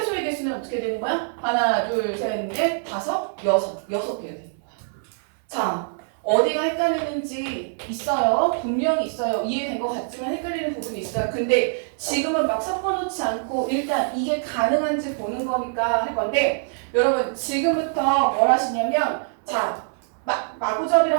개수는 어떻게 되는 거야? 하나, 둘, 셋, 넷, 다섯, 여섯 개가 되는 거야. 자, 어디가 헷갈리는지 있어요. 분명히 있어요. 이해된 것 같지만 헷갈리는 부분이 있어요. 근데 지금은 막 섞어놓지 않고 일단 이게 가능한지 보는 거니까 할 건데 여러분 지금부터 뭘 하시냐면 자,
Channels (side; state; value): left; silent; 63 dB below the other